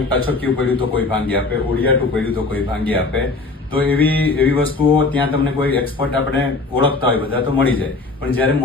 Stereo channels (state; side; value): quieter; right; 3.6 dB